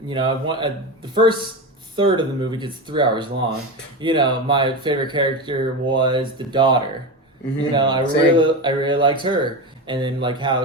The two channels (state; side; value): normal; both; correlation 0.20